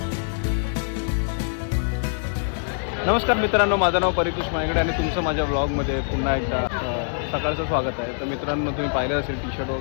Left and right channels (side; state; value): right; silent; digital silence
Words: नमस्कार मित्रांनो, माझं नाव परितोष मायगडे आणि तुमचं माझ्या ब्लॉगमध्ये पुन्हा एकदा सकाळचं स्वागत आहे. तर मित्रांनो, तुम्ही पाहिलं असेल टी शर्ट